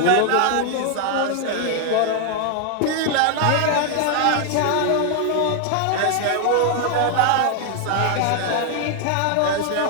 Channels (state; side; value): different; both; correlation 0.00